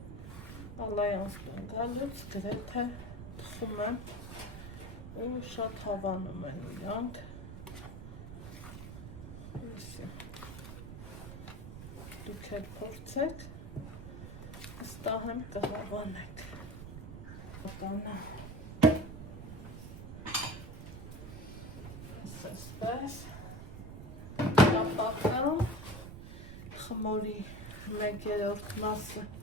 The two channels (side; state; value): right; noise; rumble, 10 dB below the sound